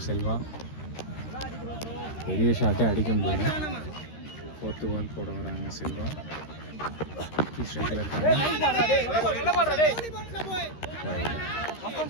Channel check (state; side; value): late; right; 13 ms